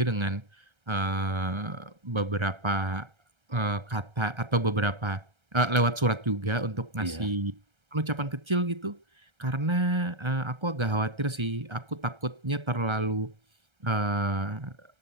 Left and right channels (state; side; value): late; left; 1.3 ms